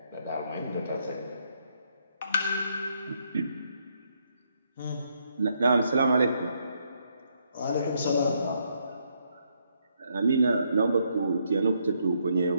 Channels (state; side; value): inverted; both; correlation -0.75